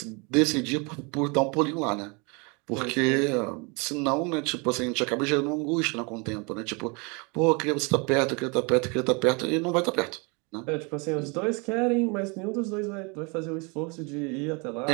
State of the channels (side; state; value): left; quieter; 31.0 dB